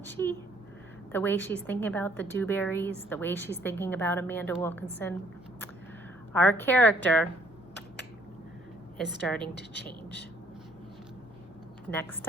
she? The way she's thinking about the Dewberries, the way she's thinking about Amanda Wilkinson. Our character is starting to change. Next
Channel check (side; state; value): both; normal; correlation 0.63